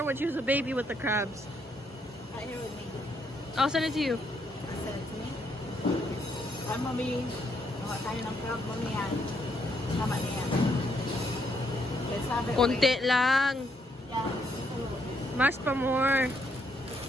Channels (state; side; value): normal; both; correlation 0.74